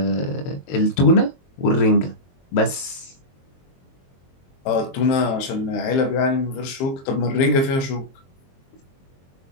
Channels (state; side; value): late; right; 22 ms